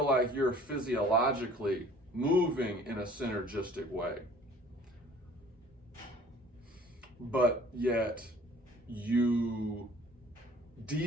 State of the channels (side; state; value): both; normal; correlation 0.52